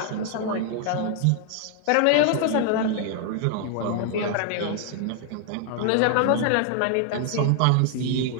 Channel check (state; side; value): different; both; correlation 0.00